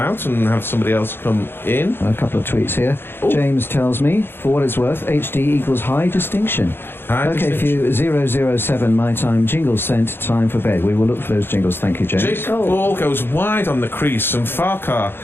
and have somebody else come in. A couple of tweets here. Ooh. James tells me, for what it's worth, HD equals high distinction. Okay, for you, 007 my time, jingles sent, time for bed. We will look for those jingles. Thank you, James. Jake Ball goes wide on the crease, and Farkar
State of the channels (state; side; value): late; right; 0.10 ms